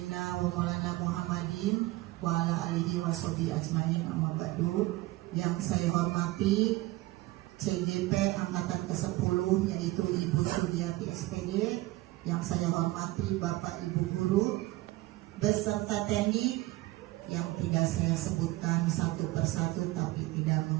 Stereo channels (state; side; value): quieter; left; 19.2 dB